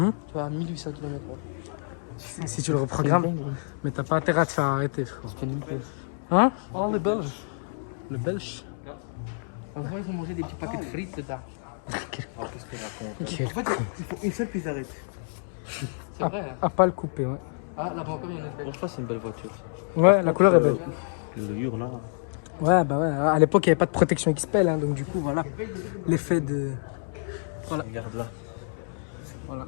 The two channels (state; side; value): silent; right; digital silence